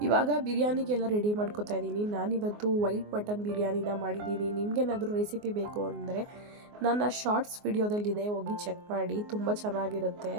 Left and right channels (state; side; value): late; left; 24 ms